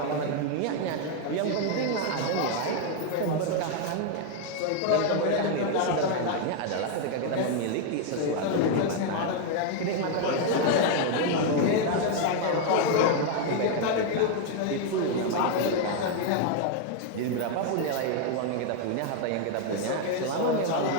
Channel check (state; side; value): different; both; correlation 0.01